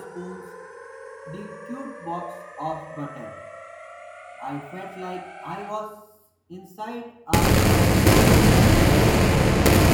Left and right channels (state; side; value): identical; both; correlation 1.00